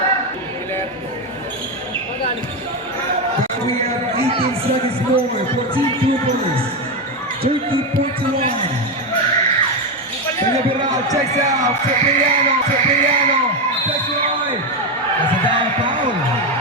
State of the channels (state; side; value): normal; both; correlation 0.10